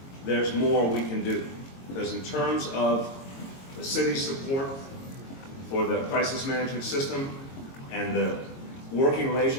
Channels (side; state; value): right; late; 22 ms